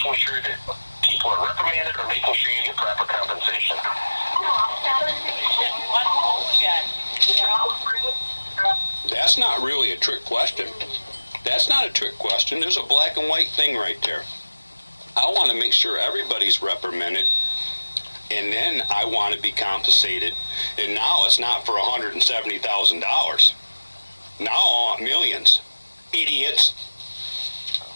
sure that people are reprimanded or making sure you get proper compensation? That's not really a trick question. That's not a trick question. There's a black and white thing right there. I want to make sure everybody's reprimanded, and then I want to be compensated. And now it's not for $170,000. Now I want millions. Idiots.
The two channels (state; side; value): inverted; both; correlation -1.00